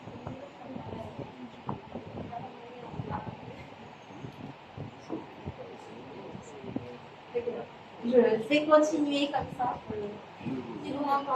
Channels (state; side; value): identical; both; correlation 1.00